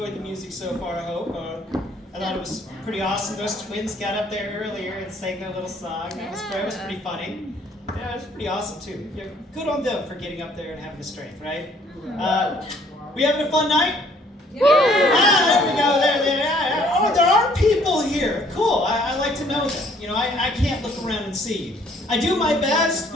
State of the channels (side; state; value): both; normal; correlation 0.61